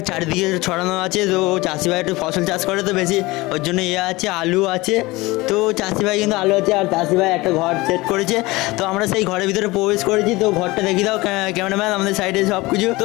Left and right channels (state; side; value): quieter; right; 21.3 dB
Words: চারিদিকে ছড়ানো আছে। তো চাষি ভাই একটু ফসল চাষ করে তো বেশি, ওর জন্য আছে আলু আছে। তো চাষি ভাই কিন্তু আলু আছে, আর চাষি ভাই একটা ঘর সেট করেছে। তো আমরা সেই ঘরের ভিতরে প্রবেশ করেছি। তো ঘরটা দেখি দাও ক্যামেরাম্যান আমাদের সাইডে সব কিছু। তো